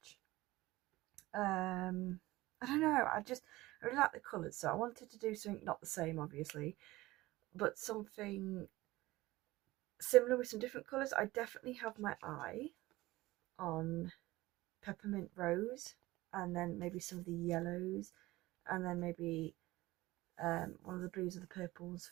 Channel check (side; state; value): left; quieter; 18.8 dB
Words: I don't know, I really like the colours, so I wanted to do something not the same obviously, but something similar with some different colours. I definitely have my eye on peppermint rose, and then maybe some of the yellows, and then maybe one of the blues or the purples